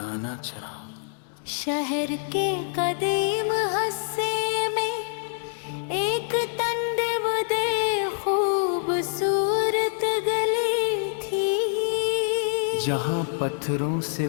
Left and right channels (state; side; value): silent; right; digital silence